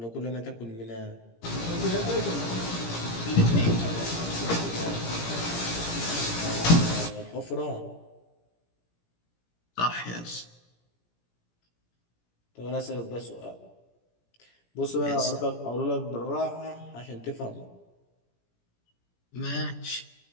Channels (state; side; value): late; right; 17 ms